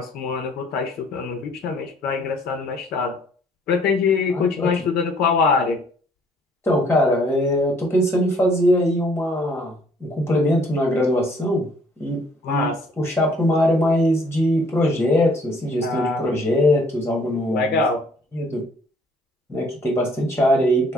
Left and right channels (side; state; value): both; normal; correlation 0.61